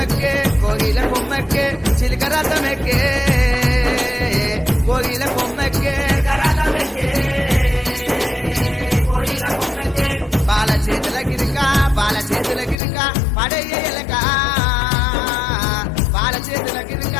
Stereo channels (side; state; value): right; drops out; at 12.8 s